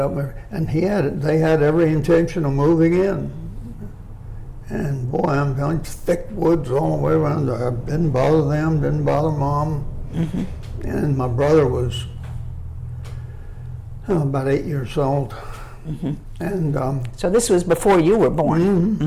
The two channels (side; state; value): both; identical; correlation 1.00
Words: And they had every intention of moving in. And boy, I'm telling you, thick woods all the way around there. Didn't bother them, didn't bother Mom. And my brother was about 8 years old. And So this was before you were born.